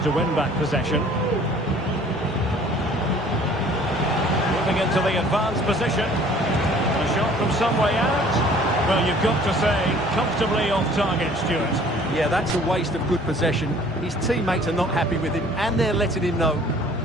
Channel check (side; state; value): both; normal; correlation 0.53